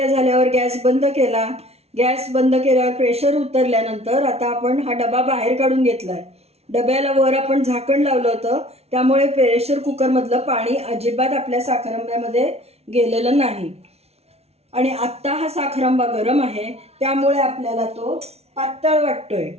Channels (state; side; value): late; left; 0.31 ms